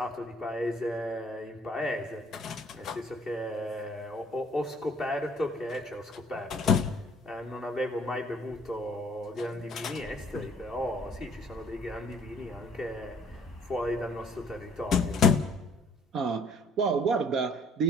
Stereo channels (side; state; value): both; normal; correlation 0.59